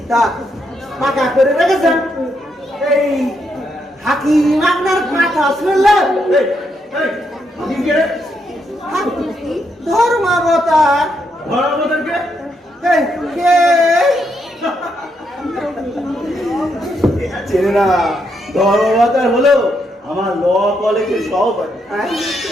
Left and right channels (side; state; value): both; normal; correlation 0.78